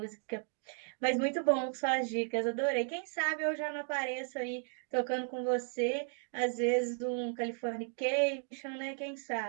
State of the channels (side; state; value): left; silent; 55 dB below the other